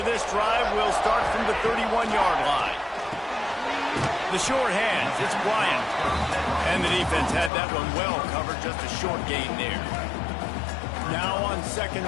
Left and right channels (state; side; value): drops out; right; at 7.5 s